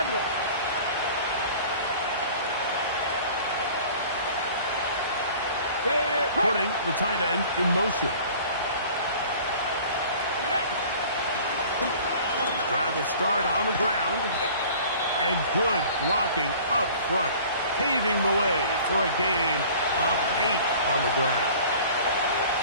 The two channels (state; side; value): inverted; both; correlation -0.46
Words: Putting the tight end in motion. Drive will start on the ground. And good blocking up front. Paving the way for a gain of 8 on the ground.